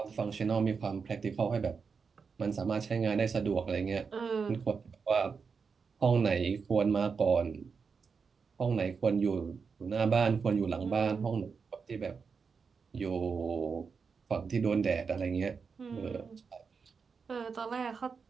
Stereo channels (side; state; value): left; quieter; 5.5 dB